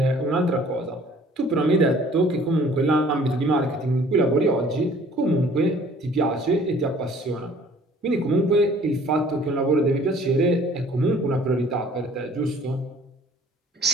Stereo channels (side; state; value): both; normal; correlation 0.54